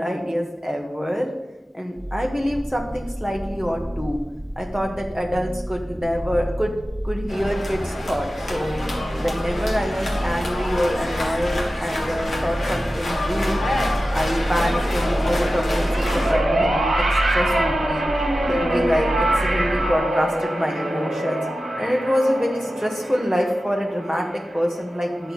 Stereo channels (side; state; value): both; normal; correlation 0.94